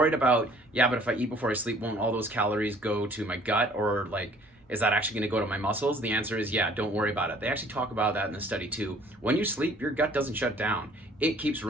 about, yeah, but if I eat before I sleep, won't all those calories go to my gut, or like, is that actually going to go to my muscles? The answer is yeah, don't worry about it. They actually talk about that in the study too. When you sleep, your gut doesn't shut down. It keeps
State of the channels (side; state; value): both; normal; correlation 0.55